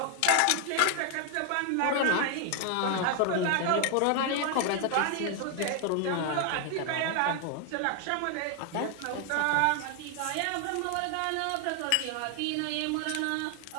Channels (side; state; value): both; different; correlation 0.00